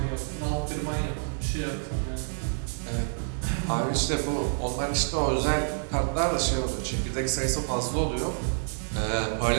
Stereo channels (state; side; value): silent; left; 59 dB below the other